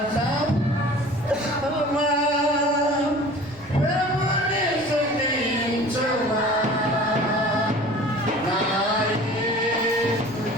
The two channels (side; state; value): right; noise; rumble, 22 dB below the sound